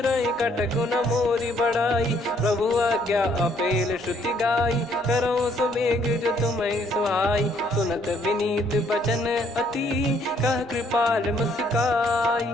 कटक न मोरी बढ़ाई। प्रभु आज्ञा अपेल श्रुति गाई, करो सुबेग जो तुम्हें सुहाई। सुनत विनीत बचन अति, कह कृपाल मुस्काई।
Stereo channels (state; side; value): normal; both; correlation 0.66